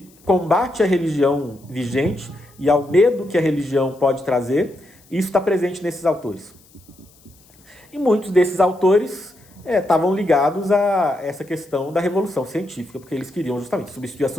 combate à religião vigente e ao medo que a religião pode trazer, isso está presente nesses autores. E muitos desses autores estavam ligados a essa questão da revolução científica, porque eles queriam justamente substituir a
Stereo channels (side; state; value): left; noise; hiss, 29 dB below the sound